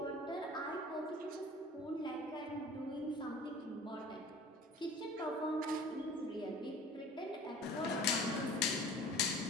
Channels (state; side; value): normal; both; correlation 0.44